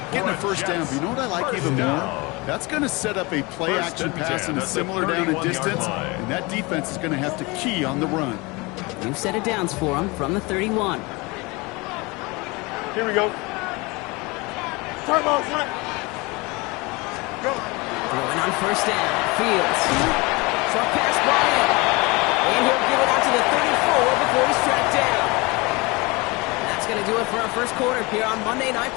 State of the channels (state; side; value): quieter; right; 25.3 dB